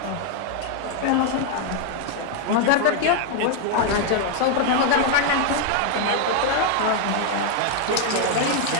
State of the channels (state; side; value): different; both; correlation 0.00